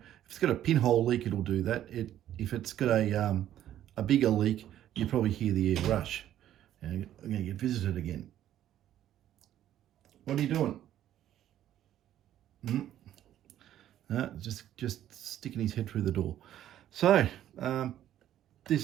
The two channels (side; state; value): left; quieter; 11.9 dB